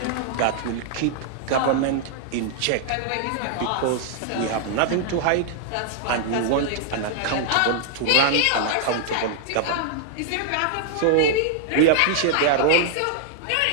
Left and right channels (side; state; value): both; different; correlation -0.01